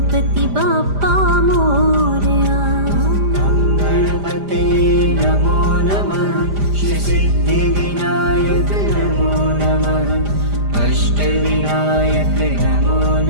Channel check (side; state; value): left; late; 5.0 ms